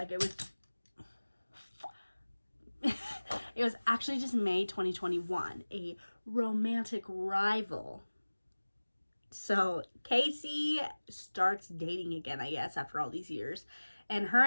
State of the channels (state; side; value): inverted; both; correlation -1.00